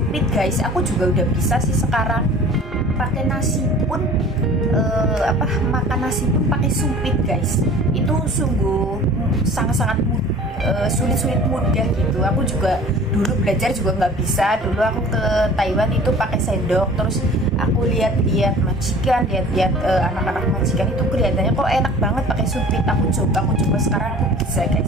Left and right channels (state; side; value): normal; both; correlation 0.45